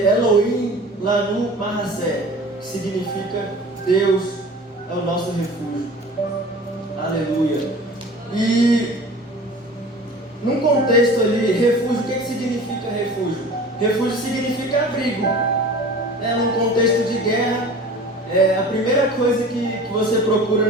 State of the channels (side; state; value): both; normal; correlation 0.41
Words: Elohim Lanu Mahasé, que significa Deus é o nosso refúgio. Aleluia. E num contexto ali, refúgio, o que significa refúgio? Refúgio significa abrigo. Num contexto de guerra, a primeira coisa que você procura